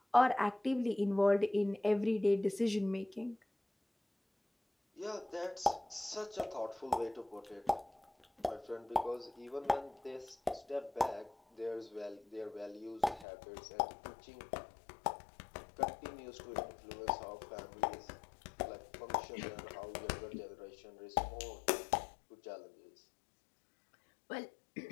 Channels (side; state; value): right; drops out; at 13.2 s